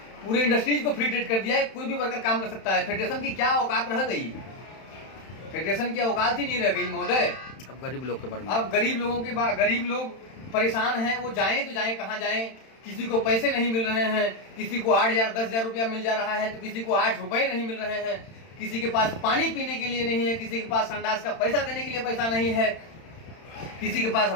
पूरे इंडस्ट्रीज को फ्री ट्रेड कर दिया है, कोई भी वर्कर काम कर सकता है। फेडरेशन की क्या औकात रह गई? फेडरेशन की औकात ही नहीं रह गई महोदय। अब गरीब लोग के बारे में, अब गरीब लोगों के गरीब लोग परेशान हैं, वो जाएं तो जाएं कहाँ जाएं? किसी को पैसे नहीं मिल रहे हैं, किसी को 8,000 10,000 रुपया मिल जा रहा है तो किसी को 8 रुपए नहीं मिल रहे हैं, किसी के पास पानी पीने के लिए नहीं है, किसी के पास संडास का पैसा देने के लिए पैसा नहीं है, किसी के पास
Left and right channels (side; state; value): right; late; 31 ms